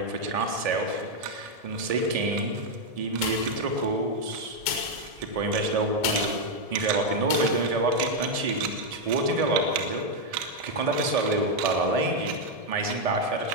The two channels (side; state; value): left; late; 1.7 ms